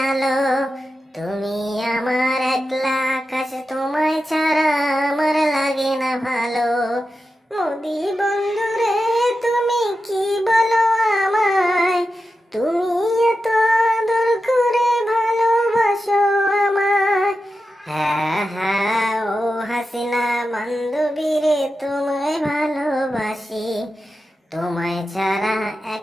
আলো। তুমি আমার একলা আকাশ, তোমায় ছাড়া আমার লাগে না ভালো। মোদি বন্ধুরে তুমি কি বলো আমায়, তুমি এত আদর করে ভালোবাসো আমায়। হ্যাঁ হ্যাঁ ও হাসিনা বান্ধবী রে, তোমায় ভালোবাসি। তোমায় ছাড়া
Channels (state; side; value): normal; both; correlation 0.91